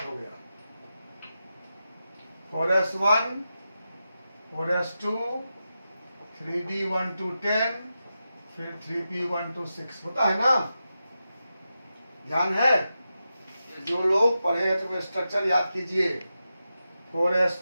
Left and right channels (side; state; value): both; inverted; correlation -0.90